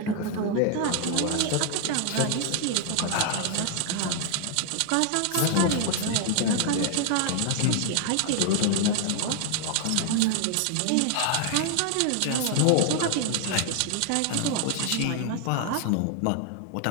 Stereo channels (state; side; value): different; both; correlation 0.00